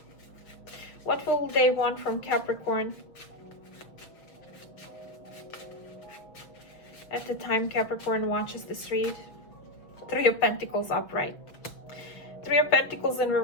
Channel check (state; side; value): late; right; 6.2 ms